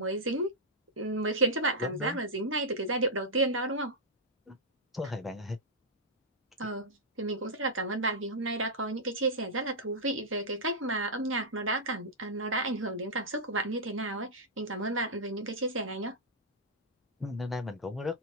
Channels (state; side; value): normal; both; correlation -0.08